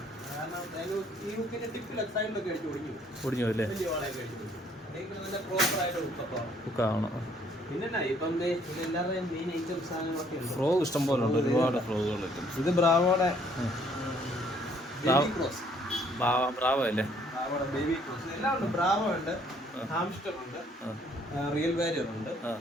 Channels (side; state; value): both; normal; correlation 0.63